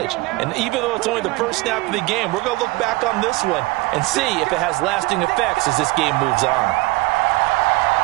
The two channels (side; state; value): left; quieter; 21.9 dB